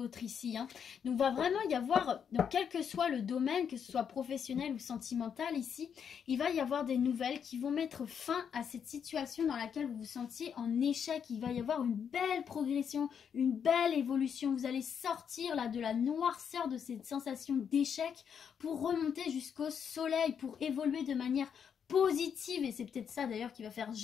ici, hein. Donc va vraiment y avoir, donc quel que soit le domaine, que ce soit professionnel ou sentimental ici, il va y avoir des nouvelles qui vont mettre fin à cette situation dans laquelle vous vous sentiez en échec. Il va y avoir une belle progression, une belle évolution. Vous allez sortir là de la noirceur de cette sensation d'échec pour remonter jusqu'au soleil, pour évoluer de manière positive, et c'est peut-être ça d'ailleurs qui va faire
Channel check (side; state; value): right; quieter; 7.5 dB